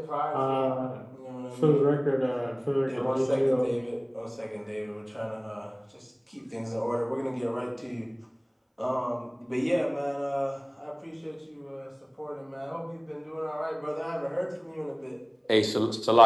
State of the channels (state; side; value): identical; both; correlation 1.00